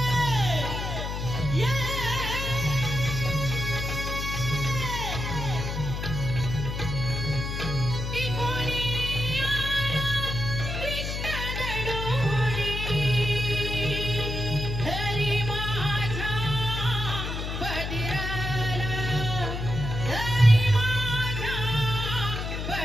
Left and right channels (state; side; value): noise; left; hum, 4 dB below the sound